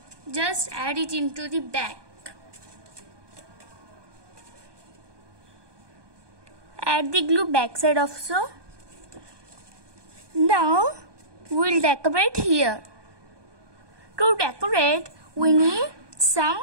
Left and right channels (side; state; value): left; late; 1.2 ms